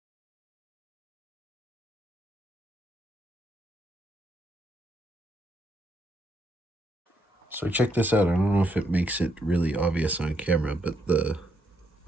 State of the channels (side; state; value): both; normal; correlation 0.76